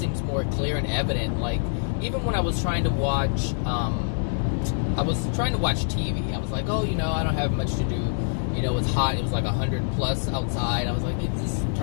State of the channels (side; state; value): right; silent; 62 dB below the other